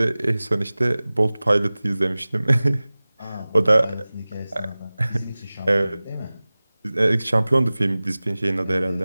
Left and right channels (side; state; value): both; inverted; correlation -0.99